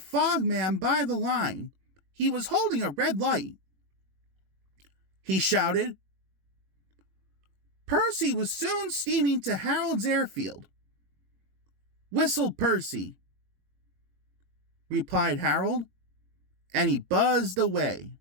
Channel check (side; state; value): left; late; 21 ms